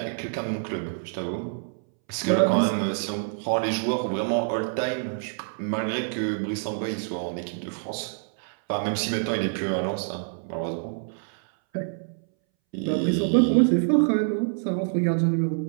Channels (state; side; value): silent; left; 61 dB below the other